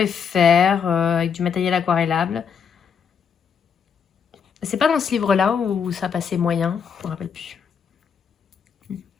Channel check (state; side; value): quieter; right; 6.9 dB